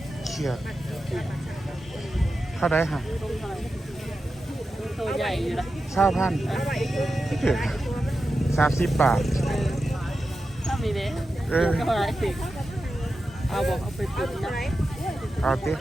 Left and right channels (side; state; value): both; normal; correlation 0.91